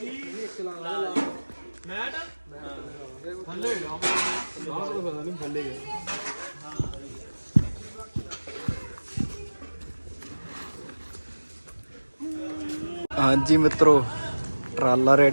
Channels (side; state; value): both; inverted; correlation -1.00